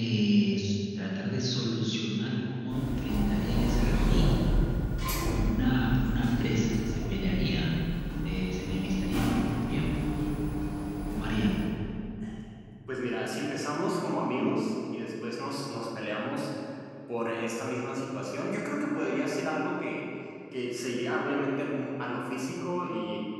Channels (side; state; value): both; identical; correlation 1.00